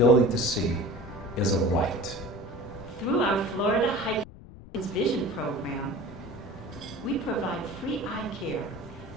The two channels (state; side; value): noise; left; rumble, 17 dB below the sound